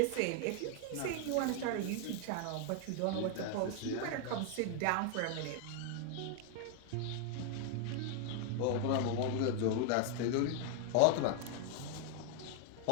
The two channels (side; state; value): both; different; correlation 0.00